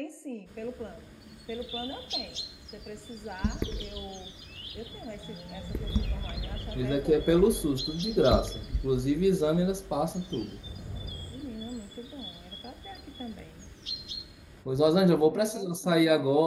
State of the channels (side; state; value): both; identical; correlation 1.00